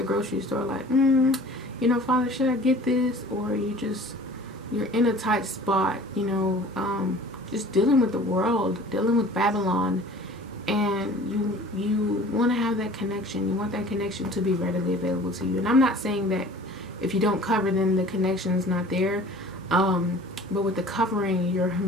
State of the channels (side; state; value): both; normal; correlation 0.46